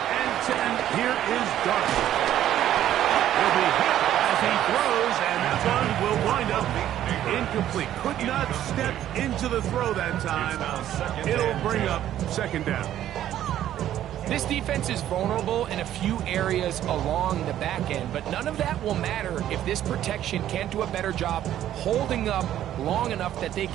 and 10, here is Darby. Will be hit as he throws, and that one will wind up incomplete. Could not step into the throw that time. It'll bring up 2nd down. This defense is vulnerable in a few areas along the back end, but none of that will matter if this protection can't do a better job holding up long enough that they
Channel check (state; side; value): quieter; left; 11.9 dB